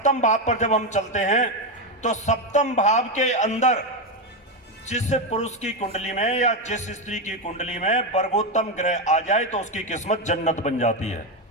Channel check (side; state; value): both; normal; correlation 0.10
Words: भाव पर जब हम चलते हैं तो सप्तम भाव के अंदर जिस पुरुष की कुंडली में या जिस स्त्री की कुंडली में वर्गोत्तम ग्रह आ जाए तो उसकी किस्मत जन्नत बन जाती है।